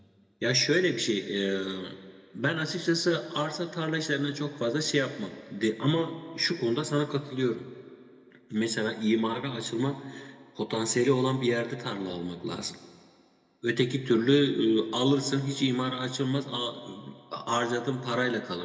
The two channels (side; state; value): both; identical; correlation 1.00